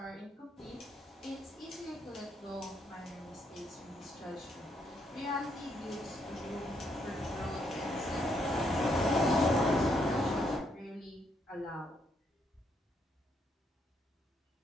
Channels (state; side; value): normal; both; correlation 0.74